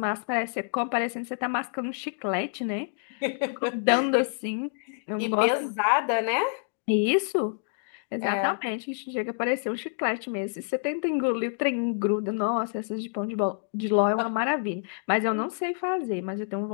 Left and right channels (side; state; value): right; silent; digital silence